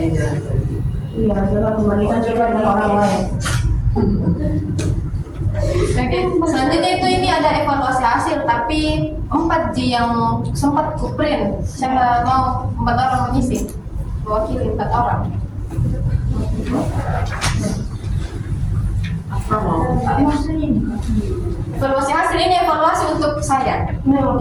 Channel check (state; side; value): identical; both; correlation 1.00